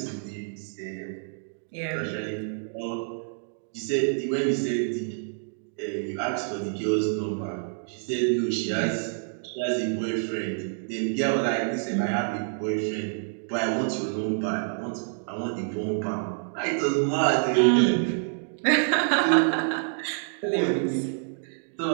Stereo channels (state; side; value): silent; left; digital silence